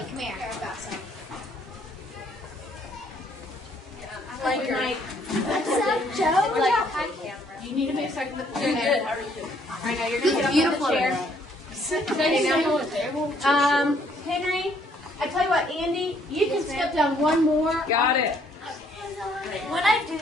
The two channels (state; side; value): normal; both; correlation 0.66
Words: come here. What's up, Joe? Like, hi, camera. You need to make a second with the chair. Good. How are you doing? I know you're going to get up on the chair. Henry, I tell you what, Andy, you can step down one more. Got it. When I do